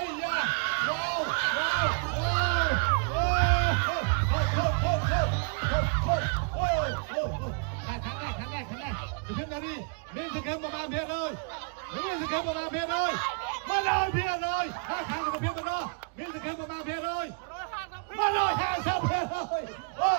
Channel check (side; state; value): left; quieter; 39.3 dB